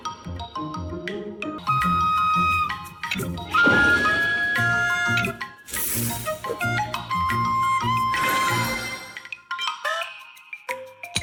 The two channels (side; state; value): both; identical; correlation 1.00